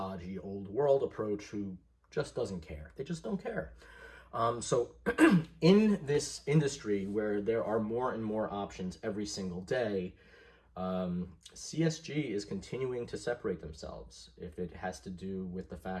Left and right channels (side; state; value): both; identical; correlation 1.00